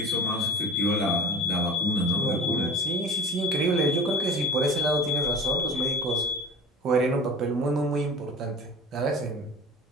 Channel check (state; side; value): normal; both; correlation 0.35